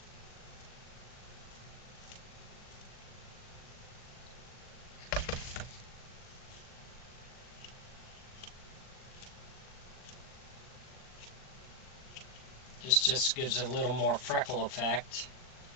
This just gives it a little more freckle effect.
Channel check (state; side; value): late; right; 39 ms